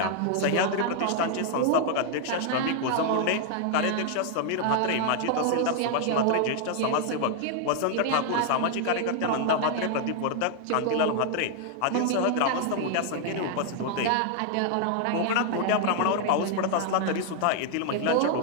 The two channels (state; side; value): different; both; correlation 0.00